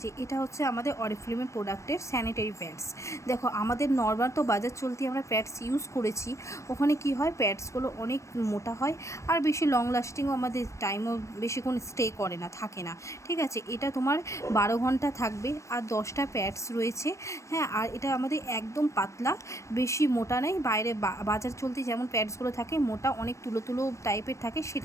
এটা হচ্ছে আমাদের অরিফ্লেমের প্রোডাক্টের স্যানিটারি প্যাডস। দেখো, আমাদের নর্মাল তো বাজার চলতি আমরা প্যাডস ইউজ করেছি, ওখানে কি হয়, প্যাডসগুলো অনেক মোটা হয় আর বেশি লং লাস্টিংও, আমাদের টাইমও বেশিক্ষণ স্টে করে না, থাকে না। ঠিক আছে, এটা তোমার 12 ঘন্টা থাকবে আর 10টা প্যাডস রয়েছে। হ্যাঁ, আর এটা আমাদের একদম পাতলা, বেশি মোটা নেই। বাইরে বাজার চলতি যেমন প্যাডসগুলো থাকে মোটা, অনেক তুলো তুলো টাইপের থাকে,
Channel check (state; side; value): late; right; 0.15 ms